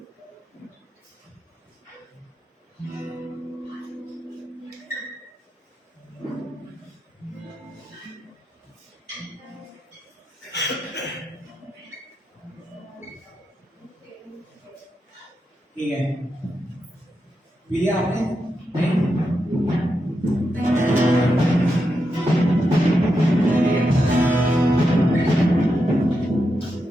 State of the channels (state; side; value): normal; both; correlation 0.86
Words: ठीक है, पी लिया आपने? नहीं?